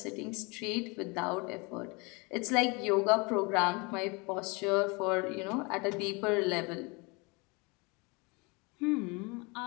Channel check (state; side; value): quieter; right; 28.5 dB